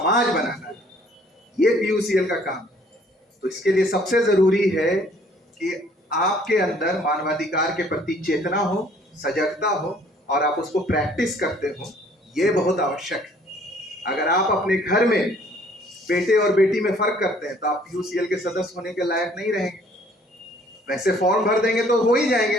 बनाना है। ये पीयूसीएल का काम। तो इसके लिए सबसे जरूरी है कि आपके अंदर मानवाधिकार के प्रति चेतना हो, सजगता हो, और आप उसको प्रैक्टिस करते हो। ये बहुत आवश्यक है। अगर आप अपने घर में बेटे और बेटी में फर्क करते हैं तो आप पीयूसीएल के सदस्य होने के लायक नहीं रहेंगे। वैसे फॉर्म भर देंगे तो हो ही जाएंगे,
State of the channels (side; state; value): both; normal; correlation 0.59